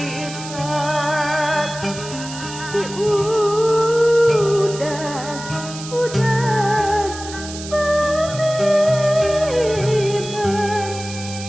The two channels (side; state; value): right; noise; hiss, 12 dB below the sound